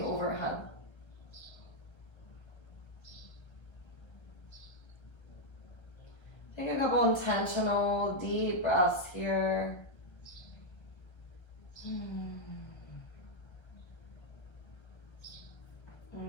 overhead. Take a couple intentional deep breaths here. And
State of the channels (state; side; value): late; right; 1.3 ms